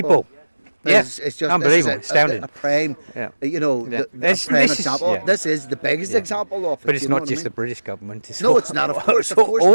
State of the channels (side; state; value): both; inverted; correlation -1.00